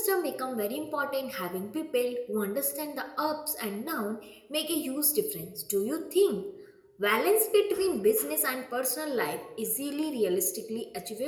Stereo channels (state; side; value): identical; both; correlation 1.00